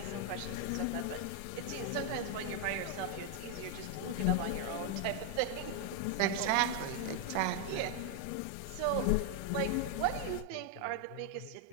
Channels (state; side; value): different; both; correlation 0.00